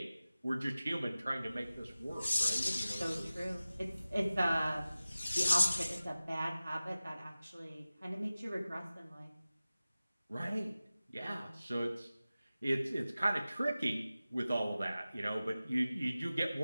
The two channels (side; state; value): both; inverted; correlation -0.97